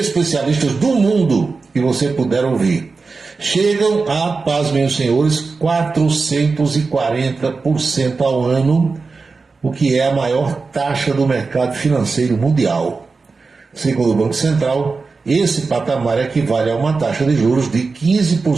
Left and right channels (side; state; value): left; quieter; 4.3 dB